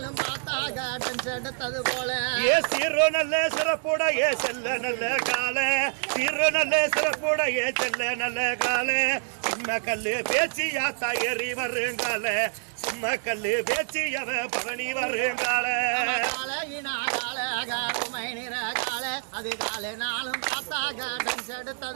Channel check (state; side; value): silent; left; 60 dB below the other